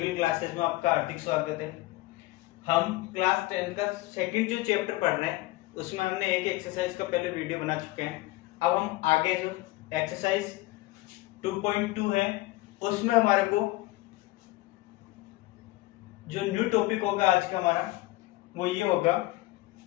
क्लासेस में आपका हार्दिक स्वागत है। हम क्लास 10 का सेकंड जो चैप्टर पढ़ रहे हैं उसमें हमने एक एक्सरसाइज का पहले वीडियो बना चुके हैं। अब हम आगे जो एक्सरसाइज 2.2 है उसमें हमारे को जो न्यू टॉपिक होगा आज का हमारा वो ये होगा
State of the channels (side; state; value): right; quieter; 19.2 dB